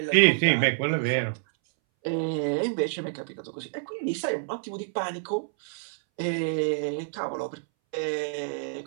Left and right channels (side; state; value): left; silent; 60 dB below the other